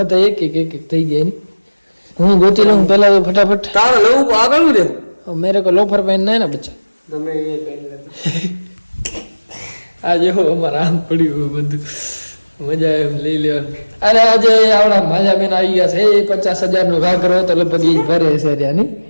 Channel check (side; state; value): both; inverted; correlation -1.00